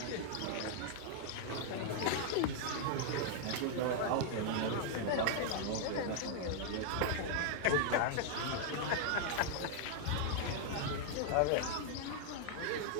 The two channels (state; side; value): different; both; correlation 0.00